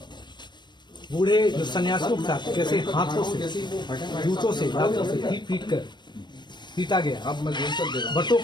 बूढ़े जो सन्यासियों के साथ कैसे हाथों से, जूतों से, दांतों से पीट कर पीटा गया। बटों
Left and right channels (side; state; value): right; late; 0.22 ms